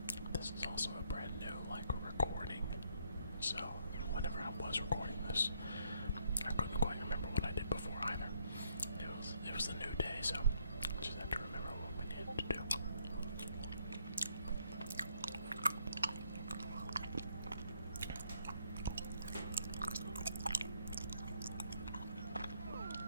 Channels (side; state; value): both; inverted; correlation -0.71